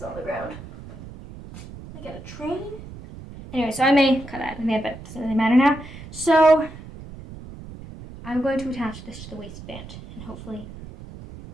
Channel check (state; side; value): noise; right; rumble, 14 dB below the sound